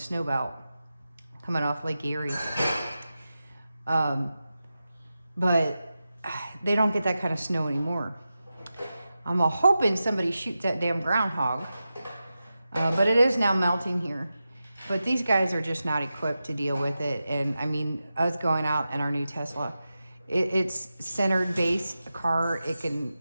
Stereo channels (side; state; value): both; inverted; correlation -0.92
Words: belt coming off Lake Erie. But they don't get that kind of snow anymore. I'm hoping somebody shoots that damn groundhog. But it is now melting here. But these guys are just not equipped to deal with it. And I mean, us going out in our new Tesla, it's centered base car. It can